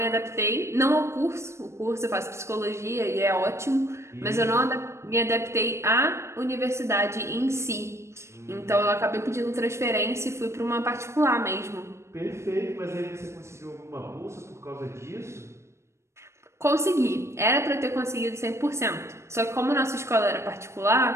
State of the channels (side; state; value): left; late; 0.13 ms